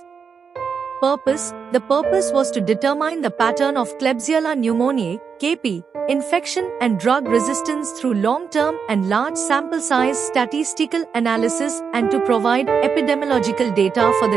The purpose was to determine the pattern of Klebsiella pneumoniae, KP, infection and drug resistance through long-term and large sample size statistical analysis and to provide epidemiological data for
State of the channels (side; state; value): left; quieter; 6.2 dB